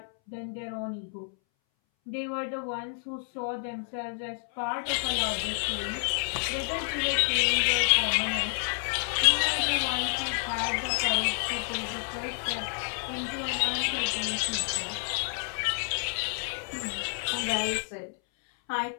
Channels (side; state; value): right; silent; 58 dB below the other